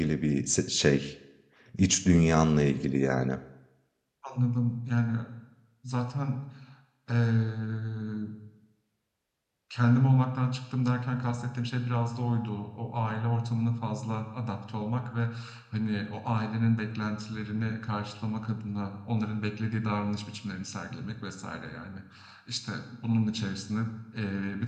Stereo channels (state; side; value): identical; both; correlation 1.00